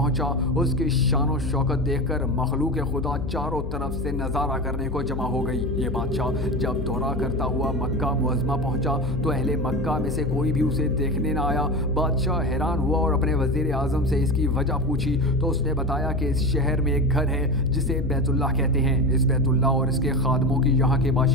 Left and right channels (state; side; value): noise; left; hum, 4 dB below the sound